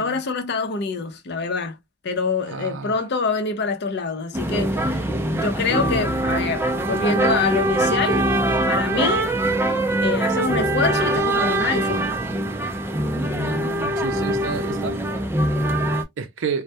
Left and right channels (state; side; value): normal; both; correlation 0.37